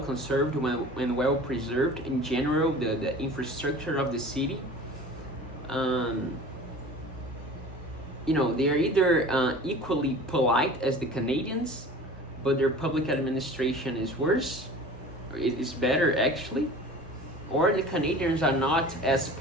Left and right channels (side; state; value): both; normal; correlation 0.41